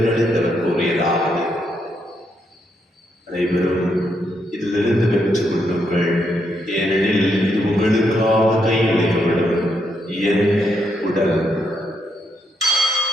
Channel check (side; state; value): both; normal; correlation 0.78